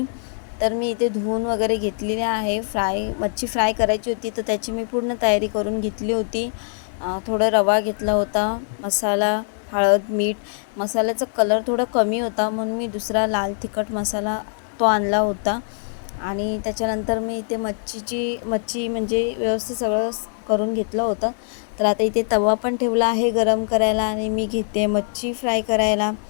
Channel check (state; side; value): silent; right; 64 dB below the other